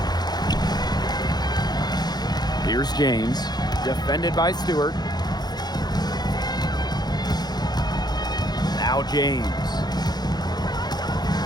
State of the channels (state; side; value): late; right; 0.20 ms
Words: Here's James, defended by Stewart. Now James.